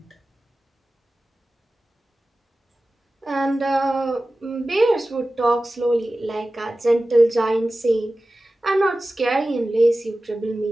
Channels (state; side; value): normal; both; correlation 0.96